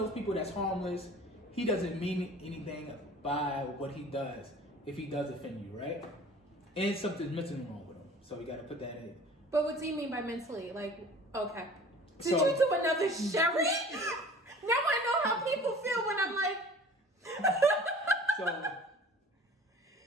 those people that's harmless. He doesn't mean anything by what he does if he does offend you, right? And something's mentally wrong with him. So you got to put that in. But what do you mean by mentally? Like, okay. Did you do another Sherry? Now I know how people feel when I'm like...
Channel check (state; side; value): normal; both; correlation 0.45